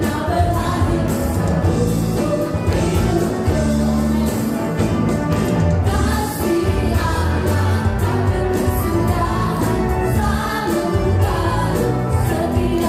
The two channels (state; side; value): identical; both; correlation 1.00